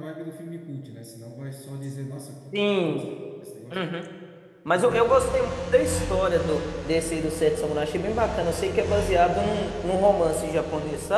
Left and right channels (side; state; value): both; identical; correlation 1.00